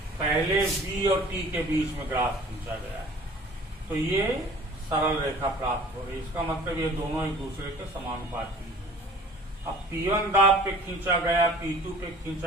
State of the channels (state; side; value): normal; both; correlation 0.48